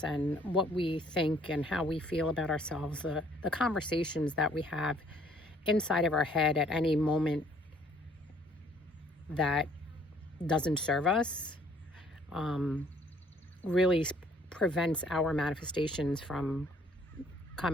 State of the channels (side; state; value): both; normal; correlation 0.61